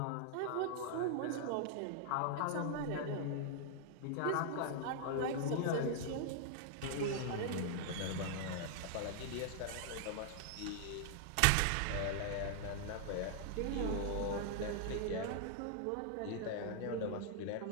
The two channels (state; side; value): different; both; correlation -0.01